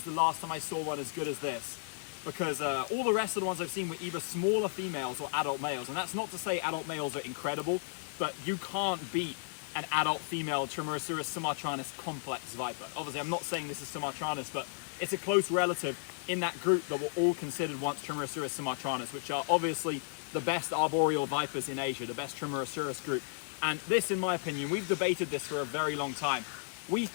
the last time I saw one as good as this. Because all the rest of the ones I've seen were either smaller females or adult males. And that's not to say adult males are incredible, but you can't beat an adult female Trimeresurus sumatranus complex viper. Obviously, I'm not saying this is sumatranus, but it's a close relative in that group that were all considered once Trimeresurus sumatranus, which are obviously the best arboreal vipers in Asia, the best Trimeresurus group. And this, in my opinion, we've debated this for a very long time. We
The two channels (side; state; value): right; silent; digital silence